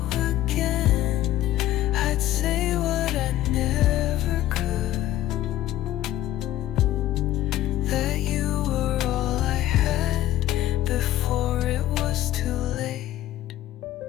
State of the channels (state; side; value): quieter; right; 14.0 dB